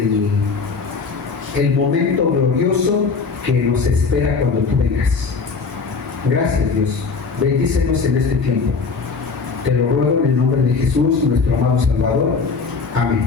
el momento glorioso que nos espera cuando tú vengas. Gracias, Dios. Bendícenos en este tiempo. Te lo ruego en el nombre de Jesús, nuestro amado Salvador. Amén.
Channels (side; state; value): right; quieter; 4.7 dB